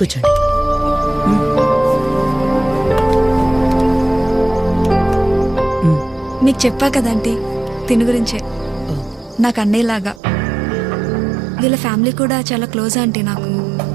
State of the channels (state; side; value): drops out; left; at 10.2 s